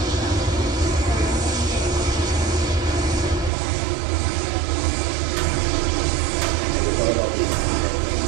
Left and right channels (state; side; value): drops out; left; at 3.5 s